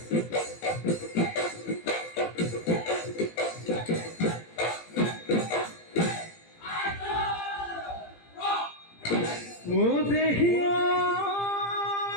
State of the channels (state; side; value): late; right; 18 ms